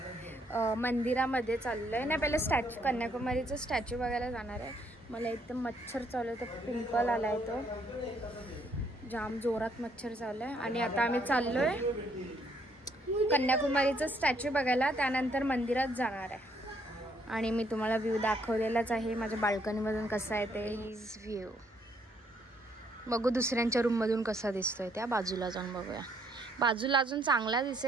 मंदिरामध्ये चाललोय. नाही पहिले स्टॅच्यू, कन्याकुमारीचं स्टॅच्यू बघायला जाणार आहे. मला एकदम मच्छर चालू आहे, तर पिंपल आलाय, तो जाम जोरात मच्छर चालू आहे. आणि आता आम्ही चाललोय कन्याकुमारीचं स्टॅच्यू बघायला, त्यानंतर मंदिरात जाणार आहे. आणि मी तुम्हाला व्ह्यू दाखवलेलाच आहे माझ्या बाल्कनीमधून कसा आहे ते. हिज व्ह्यू बघू दुसऱ्यांच्या रूममधून कसा दिसतोय. त्या बाजूला जाऊन बघूया. बाजूला अजून चांगला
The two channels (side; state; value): both; normal; correlation 0.69